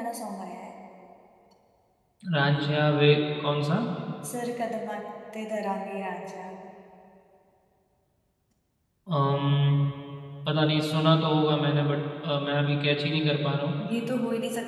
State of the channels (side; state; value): both; identical; correlation 1.00